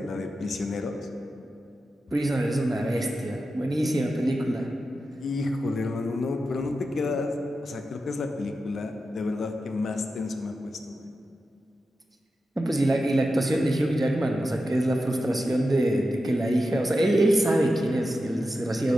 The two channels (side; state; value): both; normal; correlation 0.90